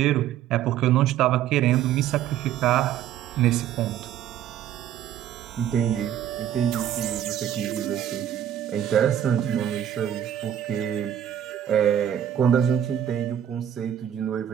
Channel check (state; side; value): quieter; left; 10.4 dB